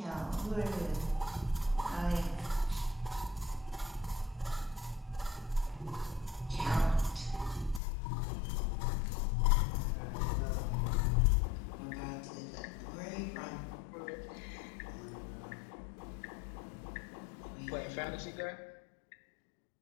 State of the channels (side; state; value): right; drops out; at 7.8 s